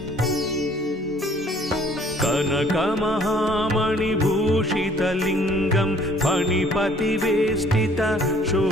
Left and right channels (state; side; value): normal; both; correlation 0.57